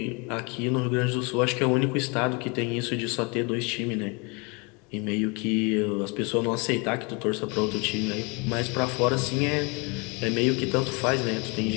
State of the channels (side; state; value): right; quieter; 30.4 dB